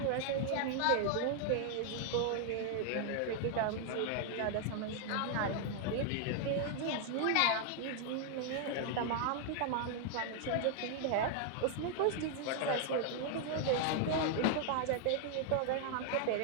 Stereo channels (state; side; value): different; both; correlation 0.00